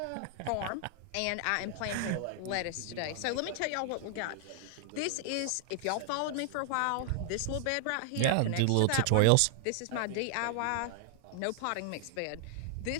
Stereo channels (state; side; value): different; both; correlation 0.00